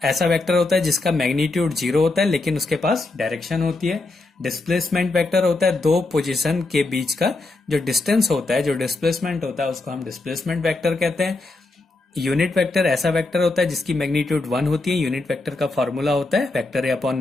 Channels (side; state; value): right; quieter; 3.2 dB